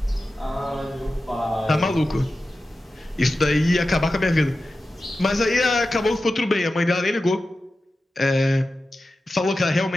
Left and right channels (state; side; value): normal; both; correlation 0.93